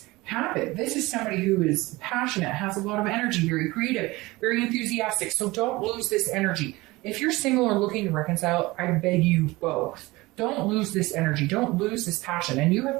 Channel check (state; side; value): quieter; left; 21.1 dB